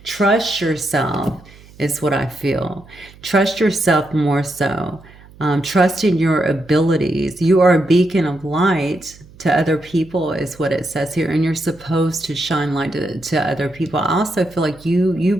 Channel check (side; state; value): right; noise; hum, 23 dB below the sound